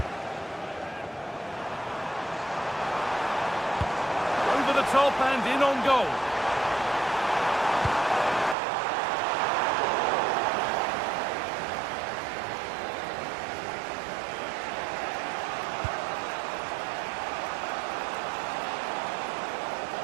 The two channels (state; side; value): drops out; left; at 8.6 s